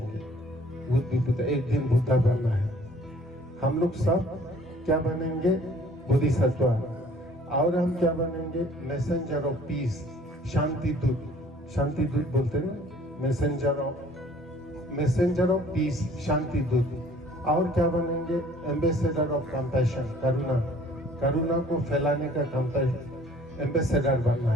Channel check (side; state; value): both; normal; correlation 0.54